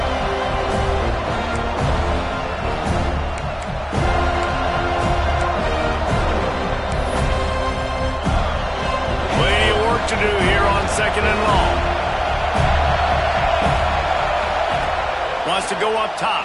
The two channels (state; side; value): identical; both; correlation 1.00